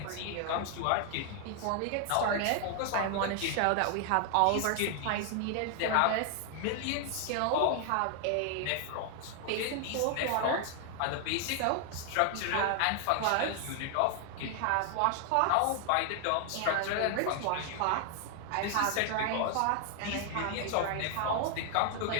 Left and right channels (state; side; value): different; both; correlation 0.00